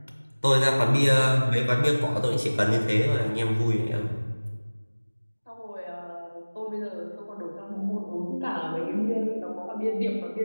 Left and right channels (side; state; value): both; inverted; correlation -1.00